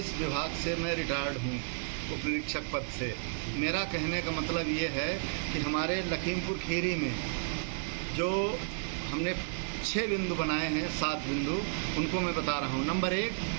विभाग से मैं रिटायर्ड हूँ उप निरीक्षक पद से। मेरा कहने का मतलब ये है कि हमारे लखीमपुर खीरी में जो हमने 6 बिंदु बनाए हैं, 7 बिंदु, उनको मैं बता रहा हूँ। नंबर 1,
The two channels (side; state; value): left; silent; digital silence